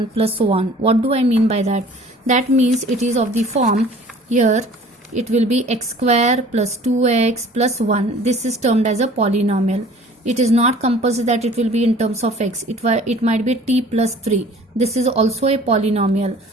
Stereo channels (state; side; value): normal; both; correlation 0.49